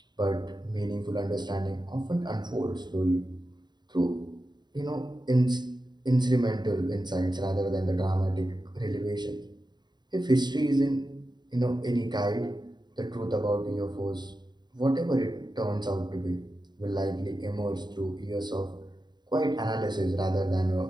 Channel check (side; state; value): left; late; 0.21 ms